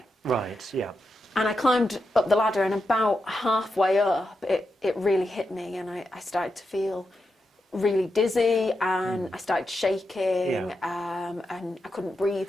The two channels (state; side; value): normal; both; correlation 0.87